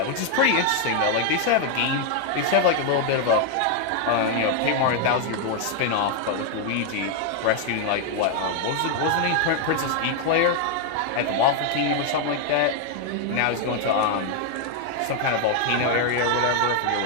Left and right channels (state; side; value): different; both; correlation 0.01